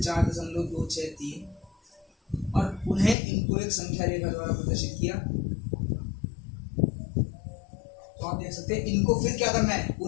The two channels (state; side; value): drops out; right; at 3.2 s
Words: 4.263 और पुनः इनको एक संख्या रेखा द्वारा प्रदर्शित किया। तो आप देख सकते हैं इनको फिर क्या करना है,